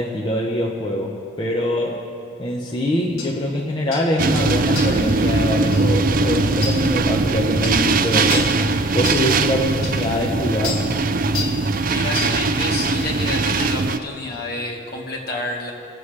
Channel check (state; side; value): normal; both; correlation 0.51